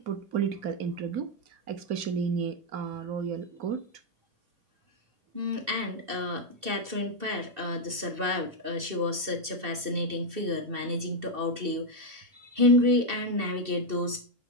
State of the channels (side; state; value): left; late; 2.6 ms